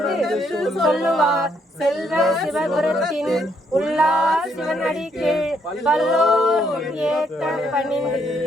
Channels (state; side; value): normal; both; correlation 0.72